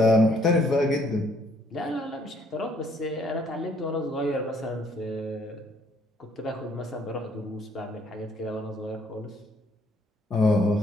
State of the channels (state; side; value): normal; both; correlation 0.66